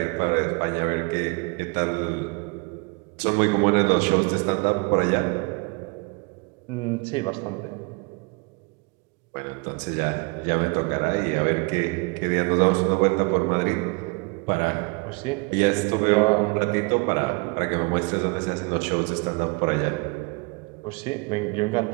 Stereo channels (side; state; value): left; quieter; 30.1 dB